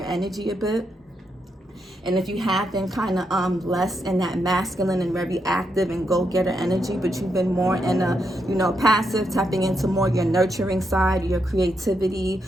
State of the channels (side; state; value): both; normal; correlation 0.81